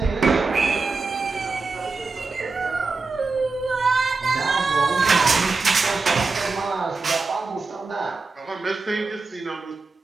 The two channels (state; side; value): quieter; left; 4.0 dB